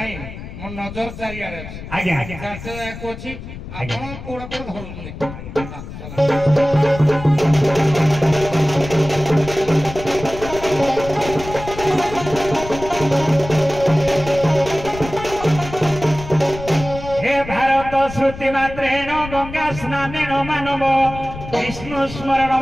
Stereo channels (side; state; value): left; noise; rumble, 12 dB below the sound